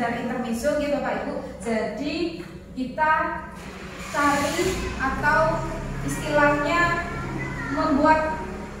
intermezzo ya Bapak Ibu. Jadi kita cari atau istilahnya membuat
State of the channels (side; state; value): both; identical; correlation 1.00